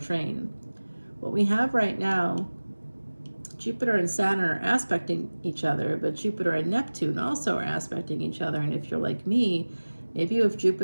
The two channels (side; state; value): both; inverted; correlation -1.00